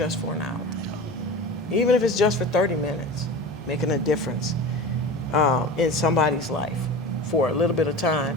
for an hour. Even if it's just for 30 minutes, making a difference in somebody's life for a little bit of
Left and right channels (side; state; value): both; normal; correlation 0.32